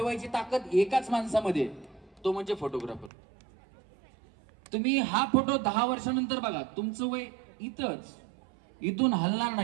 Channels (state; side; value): drops out; left; at 3.1 s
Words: ताकद एकाच माणसामध्ये, तो म्हणजे फोटोग्राफर. तुम्ही हा फोटो 10 वर्षानंतर बघा, तुमचं वय इथंच, इथून हलणार